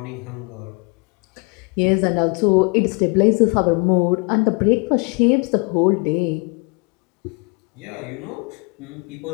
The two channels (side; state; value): right; quieter; 30.7 dB